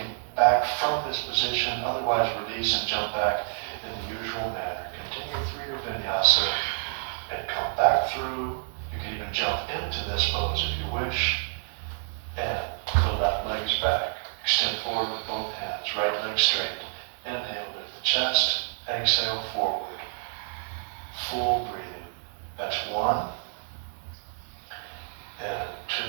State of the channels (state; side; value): silent; left; digital silence